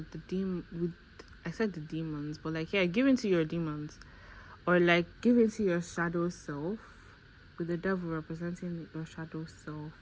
I said the demons, but like, yeah, give in to your demons, or like give in to your shadow self with the devil representing your shadow self.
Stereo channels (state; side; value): identical; both; correlation 1.00